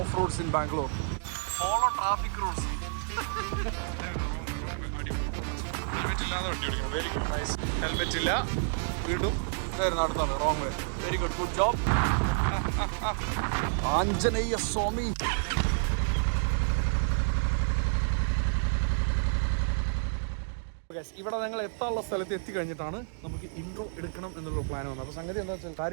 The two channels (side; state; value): left; silent; digital silence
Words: roads in Bangalore, follow traffic rules. Helmet ഇല്ല, വീണ്ടും അടുത്താണ് wrong way. Very good, good job Anjaneya Swami. ഇവിടെ ഞങ്ങൾ എത്താനുള്ള സ്ഥലത്ത് എത്തിക്കഴിഞ്ഞിട്ടാണ് നമുക്ക് ഇൻട്രോ എടുക്കണം എന്നുള്ള പ്ലാൻ വന്നത്. അപ്പോൾ സംഗതി എന്താ വെച്ചാൽ